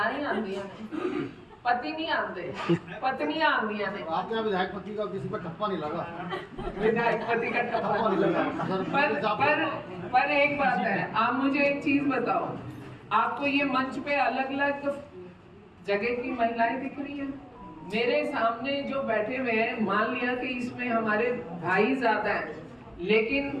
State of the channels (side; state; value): both; identical; correlation 1.00